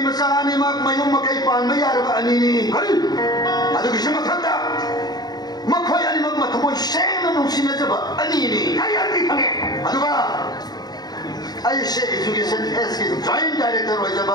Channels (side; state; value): right; late; 0.19 ms